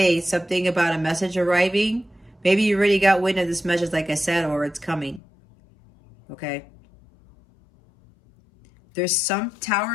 something about a message arriving. Maybe you already got wind of this message, like I said, or it's coming. Okay. There's some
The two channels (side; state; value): right; drops out; at 5.2 s